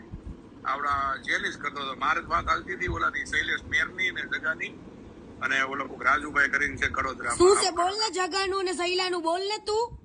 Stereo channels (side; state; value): both; identical; correlation 1.00